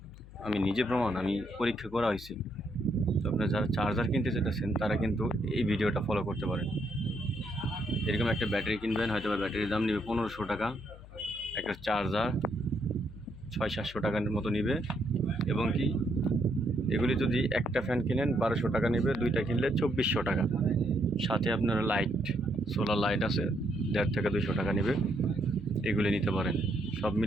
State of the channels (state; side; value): noise; left; hum, 18 dB below the sound